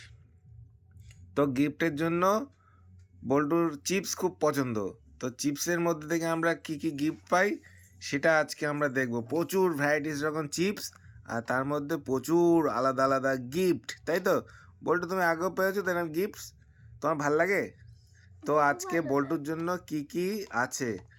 তো গিফটের জন্য বল্টুর চিপস খুব পছন্দ। তো চিপসের মধ্যে থেকে আমরা কি কি গিফট পাই সেটা আজকে আমরা দেখব। প্রচুর ভ্যারাইটিস রকম চিপস, আর তার মধ্যে প্রচুর আলাদা আলাদা গিফট, তাই তো? বল্টু, তুমি আগেও পেয়েছো তো এরকম গিফটস? তোমার ভাল লাগে? তো আজকে বল্টুর জন্য কি কি আছে?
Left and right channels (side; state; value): both; identical; correlation 1.00